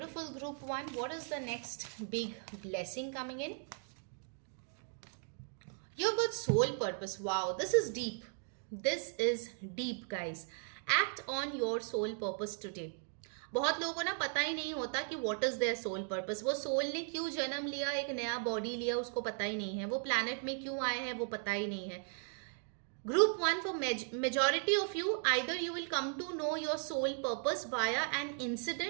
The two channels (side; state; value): left; silent; 53 dB below the other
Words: group 1. What is the next big blessing coming in? You've got soul purpose. Wow, this is deep. This is deep, guys. Act on your soul purpose today. बहुत लोगों को ना पता ही नहीं होता कि what is their soul purpose. वो soul ने क्यों जन्म लिया, एक नया बॉडी लिया, उसको पता ही नहीं है। वो प्लैनेट में क्यों आए हैं वो पता ही नहीं है। Group 1, for majority of you, either you will come to know your soul purpose via an